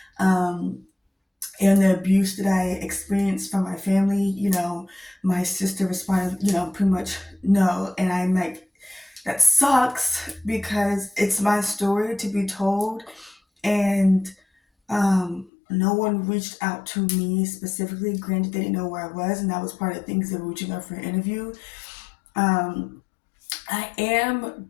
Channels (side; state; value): right; drops out; at 15.5 s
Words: um, and the abuse that I experienced from my family, my sister responded, pretty much no. And I'm like, that sucks because it's my story to be told. And no one reached out to me specifically. Granted, they didn't know where I was, and that was part of the things they were reaching out for an interview. Um, I am